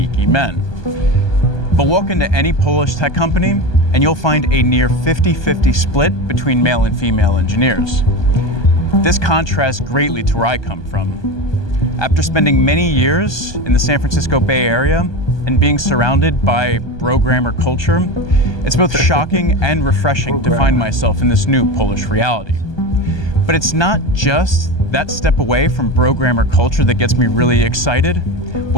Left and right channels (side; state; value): right; late; 1.2 ms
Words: men. But walk into any Polish tech company and you'll find a near 50-50 split between male and female engineers. This contrasts greatly to where I come from. After spending many years in the San Francisco Bay Area and being surrounded by programmer culture, it's both shocking and refreshing to find myself in this new Polish reality. But it's not just that step away from programmer culture that gets me really excited.